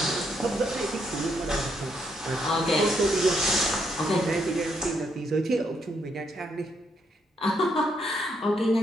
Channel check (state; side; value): normal; both; correlation 0.75